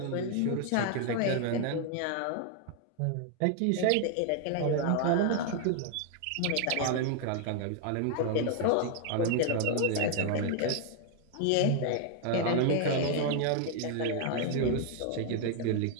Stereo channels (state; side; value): different; both; correlation 0.00